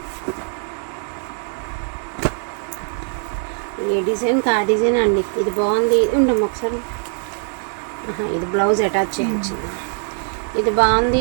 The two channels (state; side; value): silent; left; 55 dB below the other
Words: ఏ డిజైన్కి ఆ డిజైన్ అండి. ఇది బాగుంది, ఉండము ఒకసారి. ఇది బ్లౌజ్ అటాచ్ చేయించింది. ఇది బాగుంది,